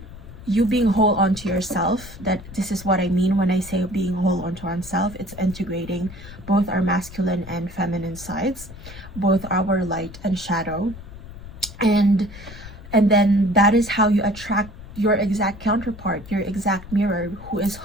you being whole onto yourself. That this is what I mean when I say being whole onto ourselves. It's integrating both our masculine and feminine sides, both our light and shadow, and then that is how you attract your exact counterpart, your exact mirror, who is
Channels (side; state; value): left; noise; rumble, 15 dB below the sound